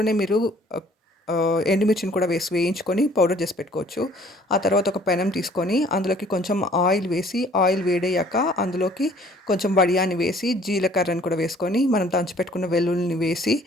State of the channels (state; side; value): normal; both; correlation 0.56